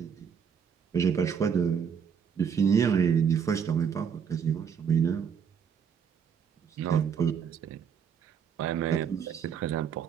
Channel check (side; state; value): left; quieter; 7.2 dB